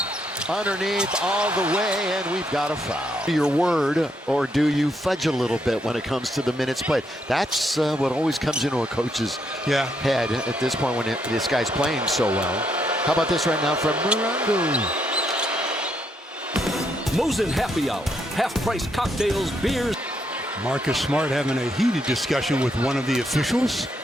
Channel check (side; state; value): both; normal; correlation 0.76